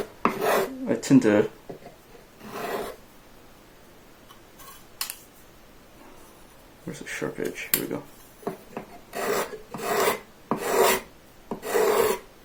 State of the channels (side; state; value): both; identical; correlation 1.00